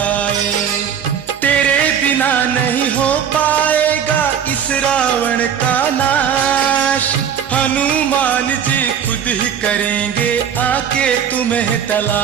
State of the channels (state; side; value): quieter; left; 8.2 dB